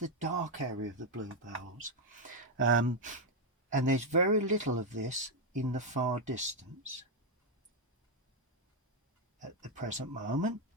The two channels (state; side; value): normal; both; correlation 0.02